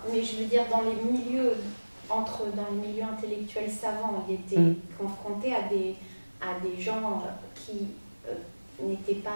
mais je veux dire dans les milieux intellectuels savants, ils étaient confrontés à des gens qui n'étaient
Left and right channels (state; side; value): inverted; both; correlation -1.00